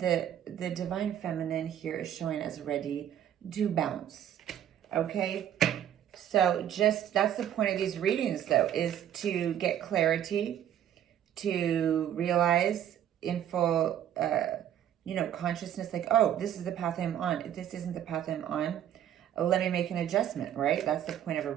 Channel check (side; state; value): left; quieter; 10.6 dB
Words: divine feminine here is showing as ready to bounce, okay? So just, that's the point of these readings, though, is to get clarity, to realize in full, you know, consciousness, like, oh, this is the path I'm on. If this isn't the path I'm on, let me make an adjustment, right? That's the point of a